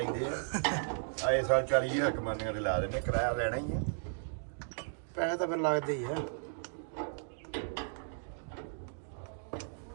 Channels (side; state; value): left; silent; digital silence